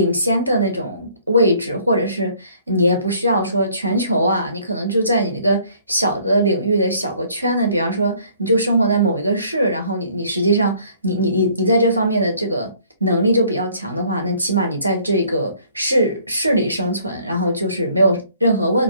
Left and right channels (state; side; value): inverted; both; correlation -0.59